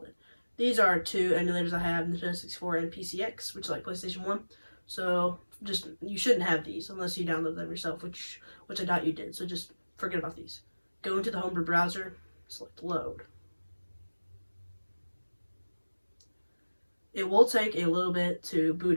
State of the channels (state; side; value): inverted; both; correlation -1.00